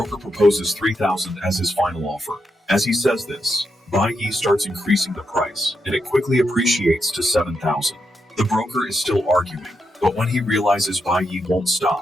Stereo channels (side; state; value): both; normal; correlation 0.83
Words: proposes 3,000 as his final offer. As he says this, Bai Yi starts increasing the price, and it quickly appreciates to 7,000. The broker is still arguing, but when he realizes Bai Yi won't